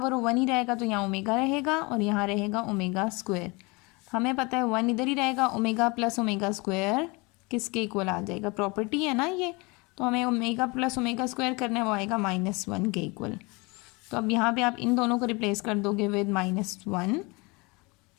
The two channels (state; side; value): quieter; right; 26.7 dB